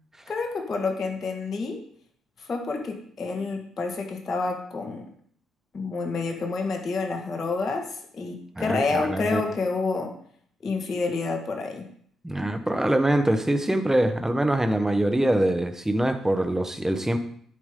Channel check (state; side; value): normal; both; correlation 0.89